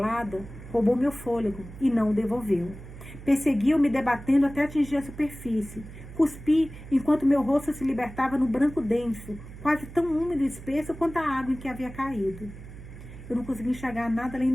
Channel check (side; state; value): right; noise; hum, 15 dB below the sound